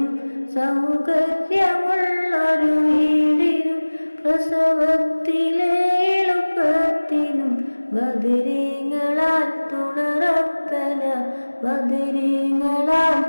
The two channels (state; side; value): inverted; both; correlation -1.00